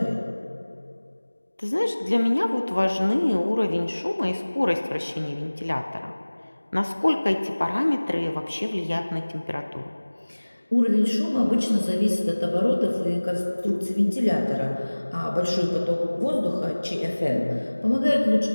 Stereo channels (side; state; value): both; inverted; correlation -1.00